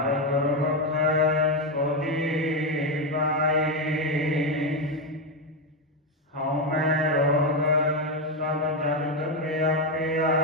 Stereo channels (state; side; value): normal; both; correlation 0.08